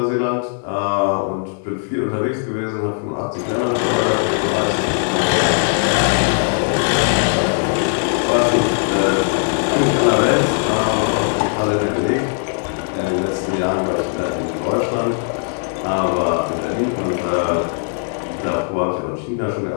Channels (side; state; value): right; silent; 63 dB below the other